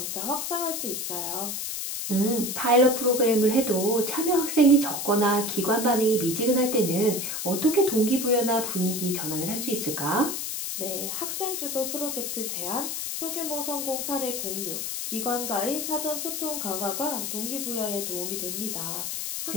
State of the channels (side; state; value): left; noise; hiss, 3 dB below the sound